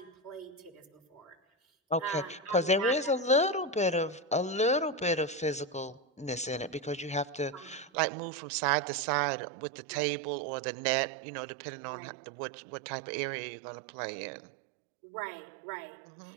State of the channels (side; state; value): left; drops out; at 7.9 s